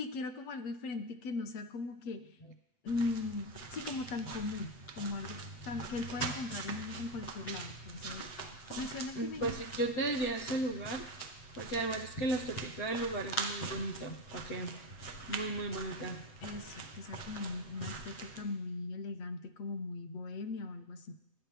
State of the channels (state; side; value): late; right; 8.0 ms